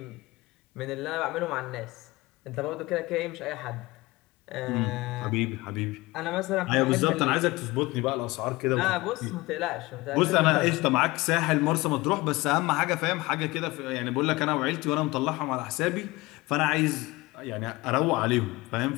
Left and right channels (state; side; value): quieter; right; 21.4 dB